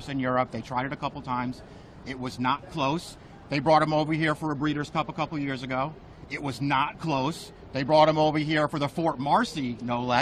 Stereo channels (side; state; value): both; identical; correlation 1.00